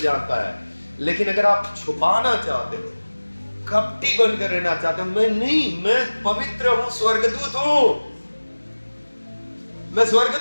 है, लेकिन अगर आप छुपाना चाहते हो, कपटी बनकर रहना चाहते हो, मैं नहीं, मैं पवित्र हूं, स्वर्गदूत हूं, मैं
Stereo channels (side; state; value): both; inverted; correlation -1.00